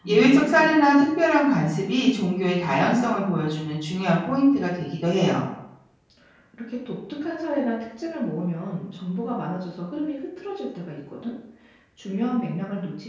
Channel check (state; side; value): identical; both; correlation 1.00